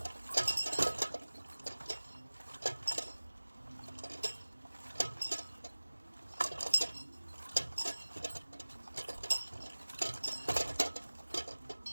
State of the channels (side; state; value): both; inverted; correlation -1.00